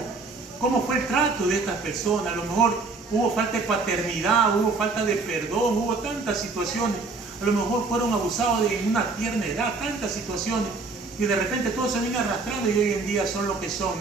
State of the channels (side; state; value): left; quieter; 3.9 dB